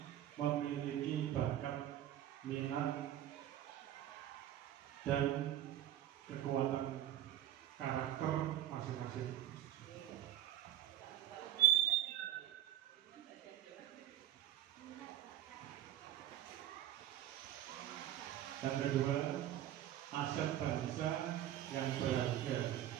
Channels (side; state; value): left; quieter; 12.2 dB